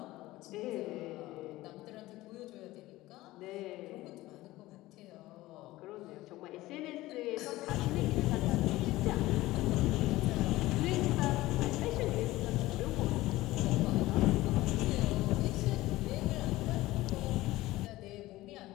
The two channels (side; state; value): right; quieter; 17.7 dB